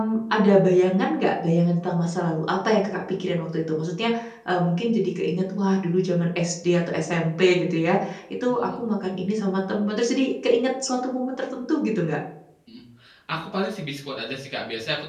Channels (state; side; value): identical; both; correlation 1.00